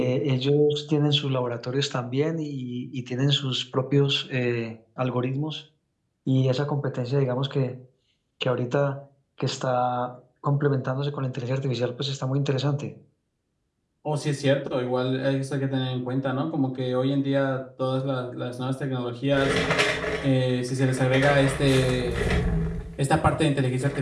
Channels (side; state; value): both; identical; correlation 1.00